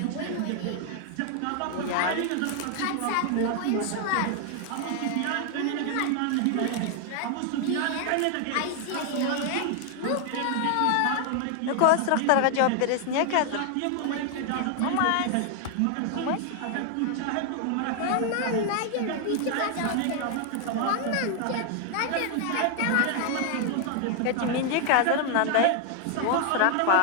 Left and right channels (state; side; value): different; both; correlation 0.00